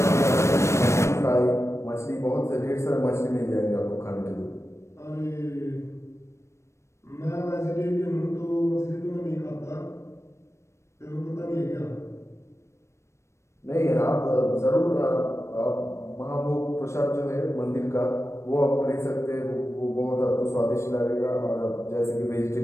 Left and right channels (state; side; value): late; right; 0.13 ms